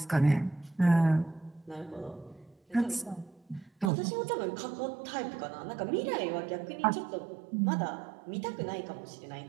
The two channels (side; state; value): left; drops out; at 3.9 s